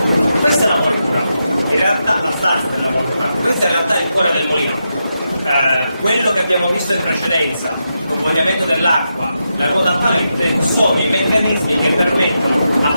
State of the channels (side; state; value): both; inverted; correlation -0.86